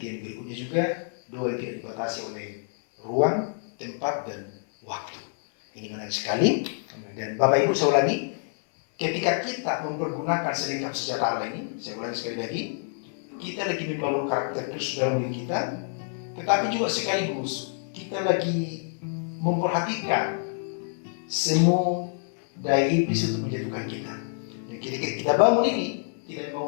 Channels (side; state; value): right; silent; 60 dB below the other